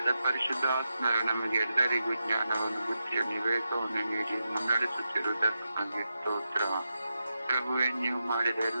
ಪರಿಶುದ್ಧಾತ್ಮರು ನಮಗೆ ಎಲ್ಲರಿಗೂ ಜ್ಞಾನವನ್ನು, ಬುದ್ಧಿಯನ್ನು, ವಿವೇಕವನ್ನು ನೀಡಿ ಮುನ್ನಡೆಸುತ್ತಿರುವುದಕ್ಕಾಗಿ ಸ್ತೋತ್ರ. ಪ್ರಭುವೆ, ನೀವು ಮಾಡಿದ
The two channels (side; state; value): both; inverted; correlation -0.88